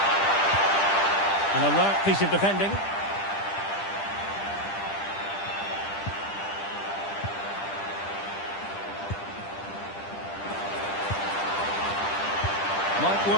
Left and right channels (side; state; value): right; late; 10 ms